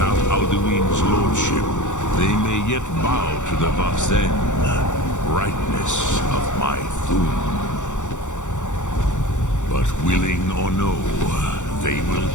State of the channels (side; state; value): right; late; 0.85 ms